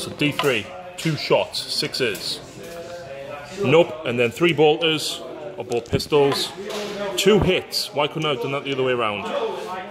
So D3, 2 shots, 6s. Nope, and then 3 bolters or bolt pistols, 2 hits. Why couldn't I have done that the other way around?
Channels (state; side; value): identical; both; correlation 1.00